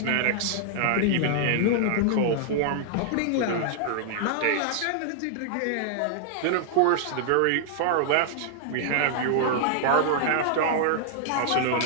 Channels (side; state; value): both; different; correlation -0.01